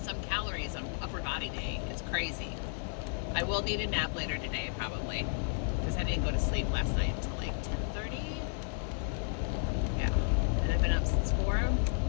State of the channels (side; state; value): right; silent; 56 dB below the other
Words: some calories on upper body day. It's crazy. I will need a nap later today, probably, because I didn't go to sleep last night until like 10:30. Yeah, and I've been up since 4.